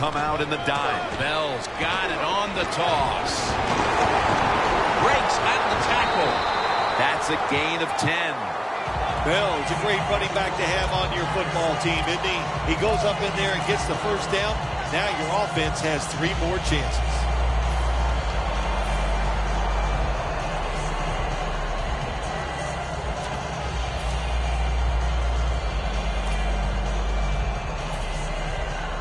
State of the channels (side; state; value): both; identical; correlation 1.00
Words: out in the dime. Bell's got it on the toss. Breaks out of the tackle. That's a gain of 10. Bell's a great running back to have on your football team, isn't he? He goes up in there and gets the first down. Now your offense has 3 more chances.